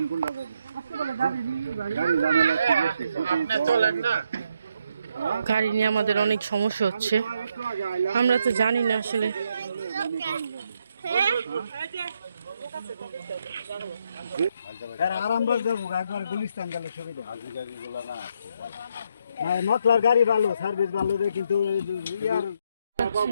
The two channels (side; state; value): both; inverted; correlation -0.77